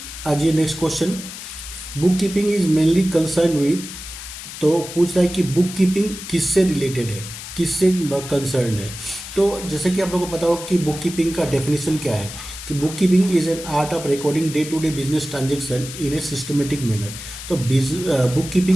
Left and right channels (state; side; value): noise; left; hiss, 11 dB below the sound